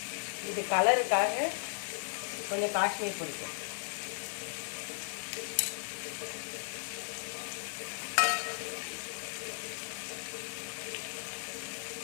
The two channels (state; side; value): silent; right; digital silence